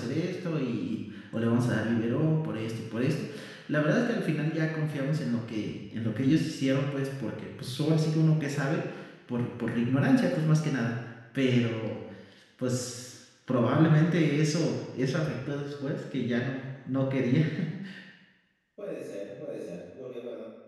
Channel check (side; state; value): both; identical; correlation 1.00